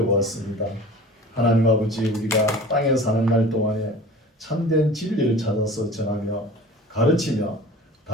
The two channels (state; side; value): normal; both; correlation 0.40